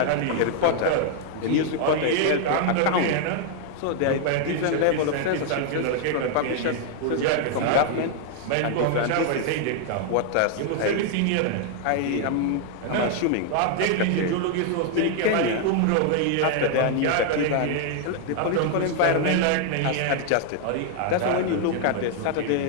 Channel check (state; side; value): different; both; correlation 0.00